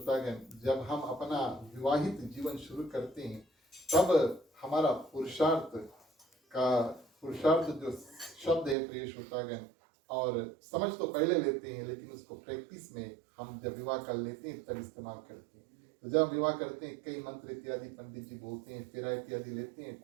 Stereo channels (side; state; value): left; drops out; at 8.8 s